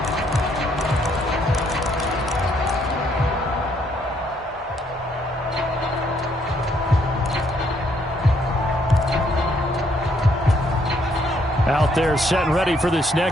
Out there set and ready for this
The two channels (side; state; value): both; normal; correlation 0.70